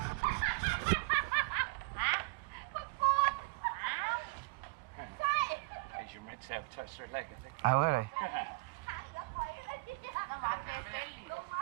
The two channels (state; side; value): quieter; left; 28.5 dB